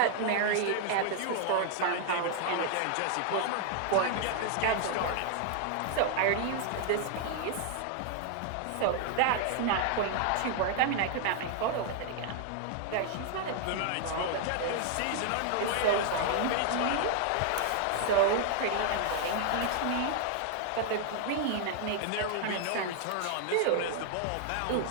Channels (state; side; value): different; both; correlation 0.00